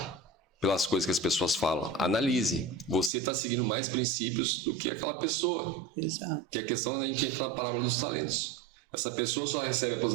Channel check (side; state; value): left; drops out; at 3.1 s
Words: pelas coisas que as pessoas falam. Analise. Você está seguindo mais princípios do que aquela pessoa. Exato. Que é a questão da gente entra na parábola dos talentos. Essa pessoa só recebe a